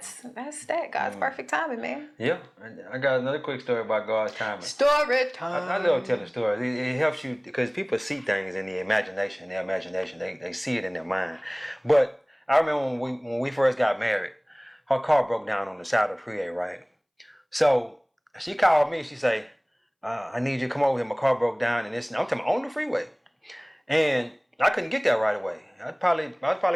that. God's perfect timing, man. Yeah. I got another quick story about God's timing. Story time. I love telling stories. It helps you, because people see things in the imagination. They see it in their mind. But I remember when we first got married, her car broke down on the side of the freeway, right? So she called me. She say, "I need you to come over here. My car broke down, and this." I'm talking about on the freeway, and I couldn't get there right away. I was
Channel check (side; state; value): both; identical; correlation 1.00